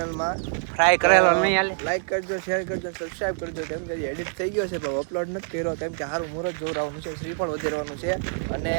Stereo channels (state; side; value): silent; left; digital silence